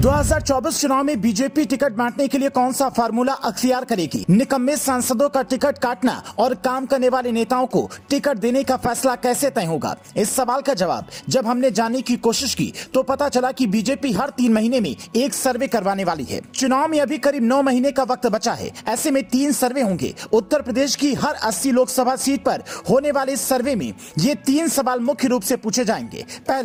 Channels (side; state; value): both; identical; correlation 1.00